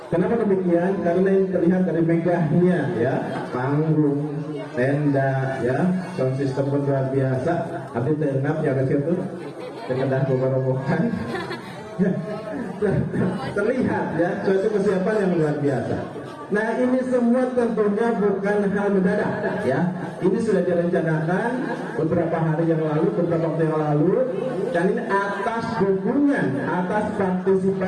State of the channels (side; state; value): both; identical; correlation 1.00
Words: Kenapa demikian? Karena yang terlihat dari megahnya ya, panggung, tenda, ya, sound system pun luar biasa. Tapi tengap ya ke situ, sekedar roboh-robohan. Terlihat ya, suatu kesiapan yang luar biasa. Nah ini semua tentunya bukan hal mendadak ya. Ini sudah direncanakan beberapa hari yang lalu, beberapa waktu yang lalu, dan ini atas dukungan, atas